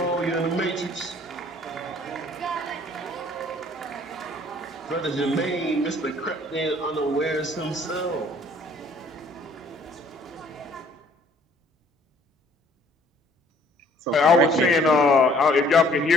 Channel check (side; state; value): both; normal; correlation 0.58